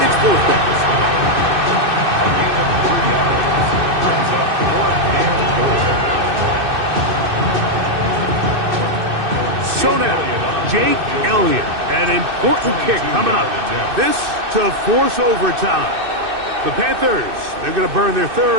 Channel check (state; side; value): late; left; 2.6 ms